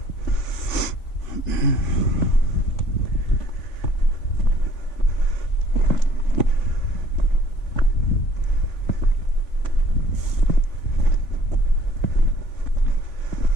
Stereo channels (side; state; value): right; late; 3.5 ms